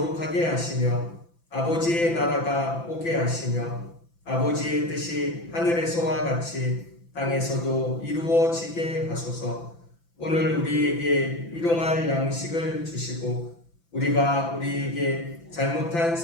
하시며 아버지의 나라가 오게 하시며 아버지의 뜻이 하늘에서와 같이 땅에서도 이루어지게 하소서. 오늘 우리에게 일용할 양식을 주시고 우리가 우리에게 잘못한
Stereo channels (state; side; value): late; right; 5.9 ms